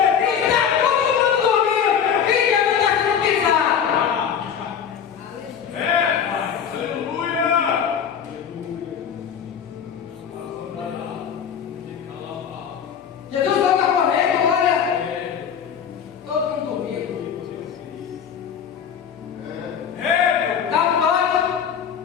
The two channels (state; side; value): quieter; right; 7.8 dB